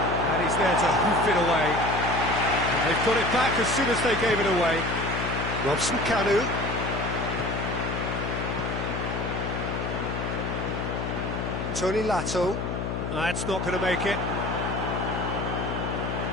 And he's there to hoof it away. And they've got it back as soon as they gave it away. Robson Kanu. Tony Lato. That's not going to make it.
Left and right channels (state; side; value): noise; left; hum, 3 dB below the sound